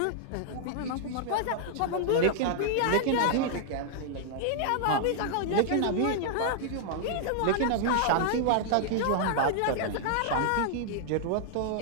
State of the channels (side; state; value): both; different; correlation -0.01